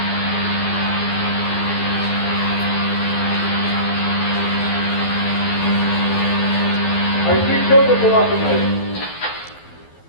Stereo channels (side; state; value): right; late; 12 ms